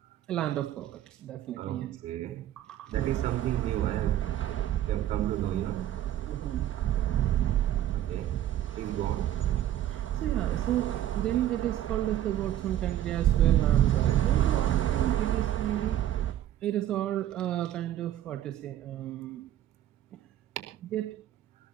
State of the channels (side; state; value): left; quieter; 12.2 dB